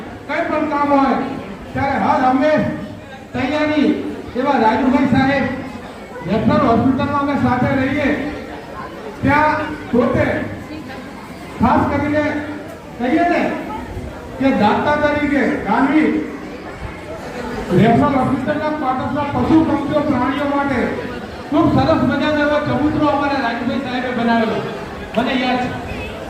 કઈ પણ કામ હોય ત્યારે હર હંમેશ તૈયારી એવા રાજુભાઈ સાહેબ રેફરલ હોસ્પિટલમાં અમે સાથે રહીએ ત્યાં પોતે ખાસ કરીને કહીએ ને કે દાતા તરીકે ગાંધી રેફરલ હોસ્પિટલના ક્વાર્ટર્સના પશુ પક્ષીઓ પ્રાણીઓ માટે ખૂબ સરસ મજાનો એવો ચબૂતરો અમારા રાજુભાઈ સાહેબે બનાવેલો મને યાદ છે.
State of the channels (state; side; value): identical; both; correlation 1.00